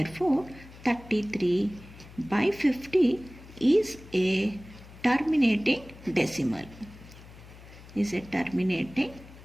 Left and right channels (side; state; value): left; noise; hum, 19 dB below the sound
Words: 33 by 50 is a terminating decimal. Is a terminating